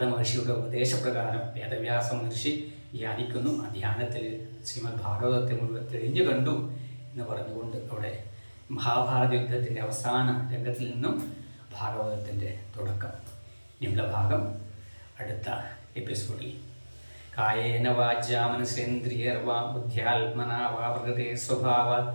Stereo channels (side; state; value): both; inverted; correlation -1.00